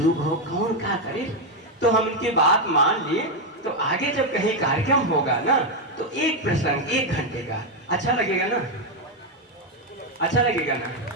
हो कौन क्या करे। तो हम उनकी बात मान लिए। तो आगे जब कहीं कार्यक्रम होगा ना तो एक प्रसंग 1 घंटे का अच्छा लगेगा ना, अच्छा लगेगा ना।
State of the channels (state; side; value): normal; both; correlation 0.04